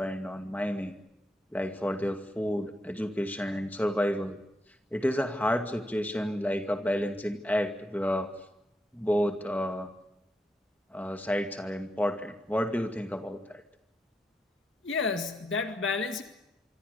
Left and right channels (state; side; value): normal; both; correlation 0.82